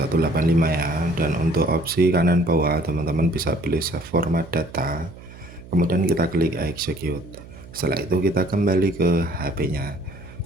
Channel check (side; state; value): right; noise; hum, 18 dB below the sound